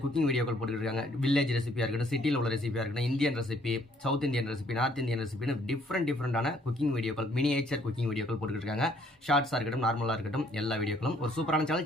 குக்கிங் வீடியோக்கள் போட்டுக்கிட்டு இருக்காங்க. வில்லேஜ் ரெசிபியாக இருக்கட்டும், சிட்டியில் உள்ள ரெசிபியாக இருக்கட்டும், Indian recipe, south Indian recipe, north Indian ரெசிபின்னு டிஃப்ரெண்டான குக்கிங் வீடியோக்கள், மினியேச்சர் குக்கிங் வீடியோக்கள் போட்டுக்கிட்டு இருக்காங்க. ஷார்ட்ஸாக இருக்கட்டும், நார்மலாக இருக்கட்டும், எல்லா வீடியோக்களும் ஒரு சூப்பரான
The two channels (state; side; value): normal; both; correlation 0.64